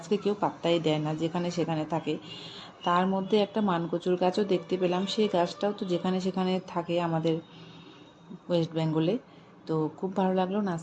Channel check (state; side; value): identical; both; correlation 1.00